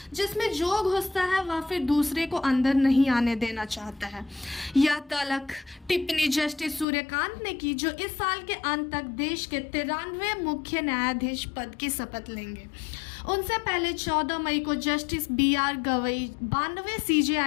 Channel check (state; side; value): drops out; right; at 6.9 s